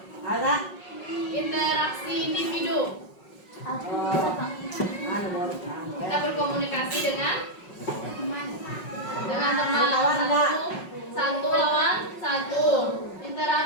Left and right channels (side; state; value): right; late; 5.4 ms